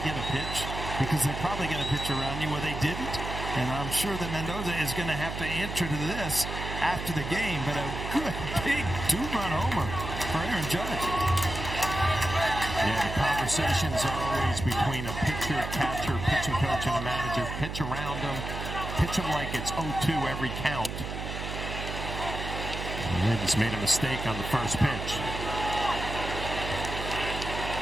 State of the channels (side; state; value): right; noise; hum, 6 dB below the sound